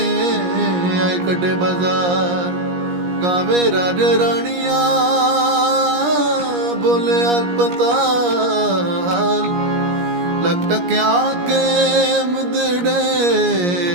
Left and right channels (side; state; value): left; late; 17 ms